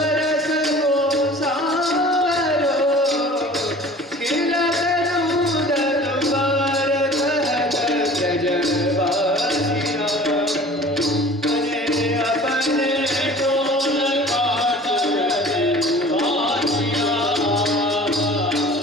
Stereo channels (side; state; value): both; normal; correlation 0.45